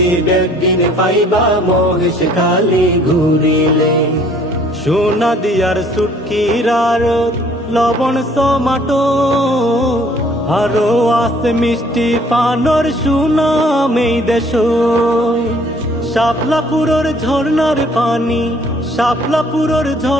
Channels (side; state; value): both; normal; correlation 0.58